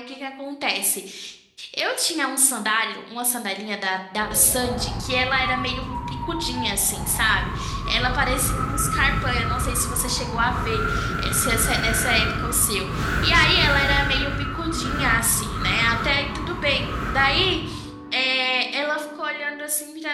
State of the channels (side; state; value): both; identical; correlation 1.00